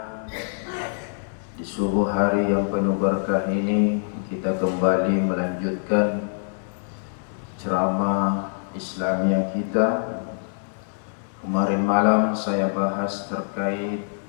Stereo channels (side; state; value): right; silent; digital silence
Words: di subuh hari yang penuh berkah ini kita kembali melanjutkan ceramah Islamiyah kita. Kemarin malam saya bahas terkait